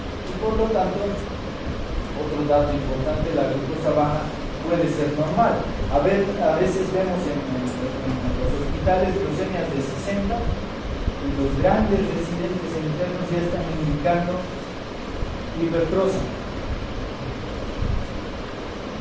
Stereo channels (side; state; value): both; identical; correlation 1.00